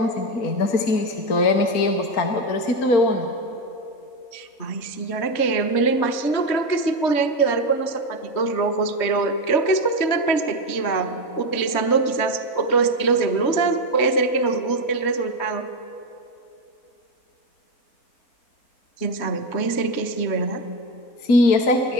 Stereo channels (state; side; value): late; right; 3.2 ms